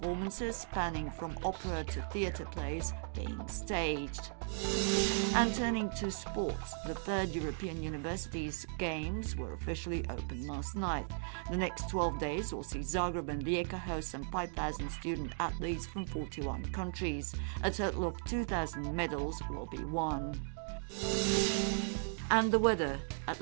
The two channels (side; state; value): left; silent; digital silence